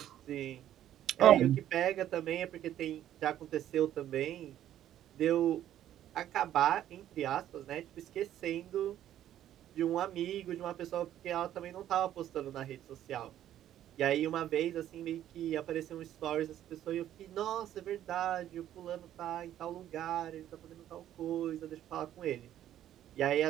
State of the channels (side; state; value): left; quieter; 11.7 dB